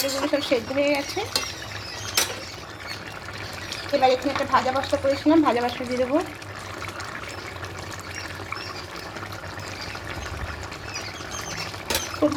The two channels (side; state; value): both; identical; correlation 1.00